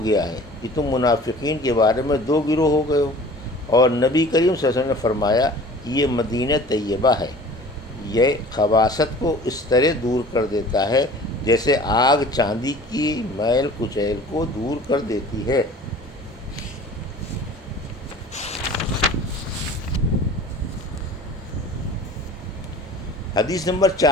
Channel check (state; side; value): normal; both; correlation 0.44